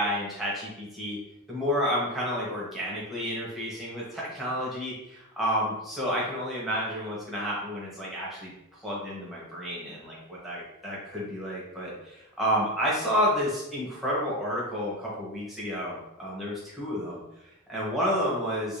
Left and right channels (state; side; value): normal; both; correlation 0.17